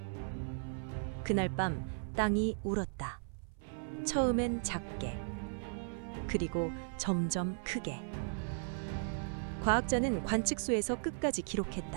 그날 밤 땅이 울었다. 처음엔 작게, 그리고 점점 크게. 과학자는 관측소에서 끝까지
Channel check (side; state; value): left; silent; 53 dB below the other